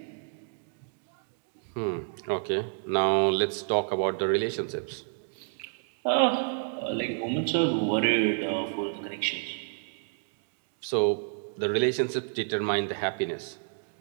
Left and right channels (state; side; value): silent; left; digital silence